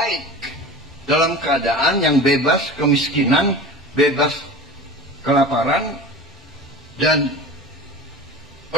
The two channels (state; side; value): normal; both; correlation 0.34